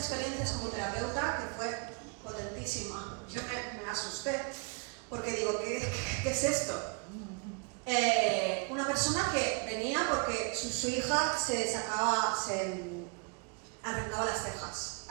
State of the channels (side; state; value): left; quieter; 35.4 dB